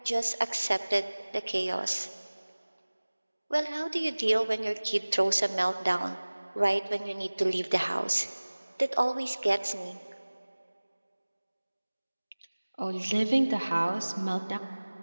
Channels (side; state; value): both; inverted; correlation -1.00